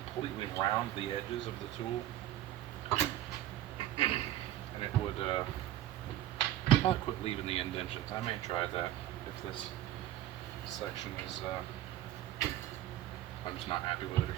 round the edges of the tool, and it would probably quit leaving the indentions. I may try that if this section is I'm just not happy with it or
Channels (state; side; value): quieter; left; 13.3 dB